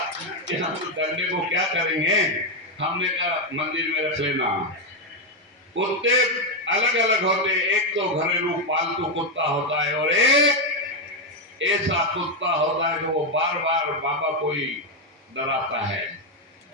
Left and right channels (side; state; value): both; normal; correlation 0.05